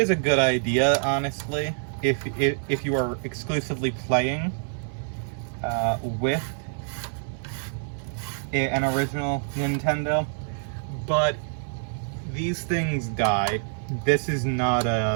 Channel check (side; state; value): left; silent; 61 dB below the other